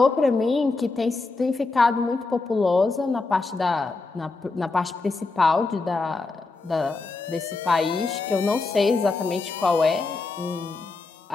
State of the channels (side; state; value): right; quieter; 3.7 dB